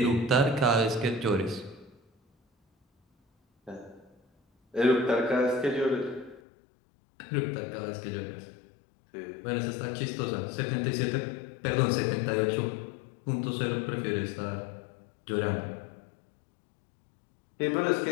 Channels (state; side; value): drops out; right; at 6.4 s